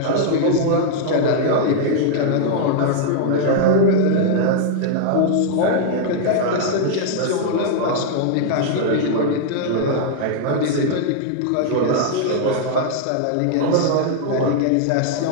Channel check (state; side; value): different; both; correlation -0.01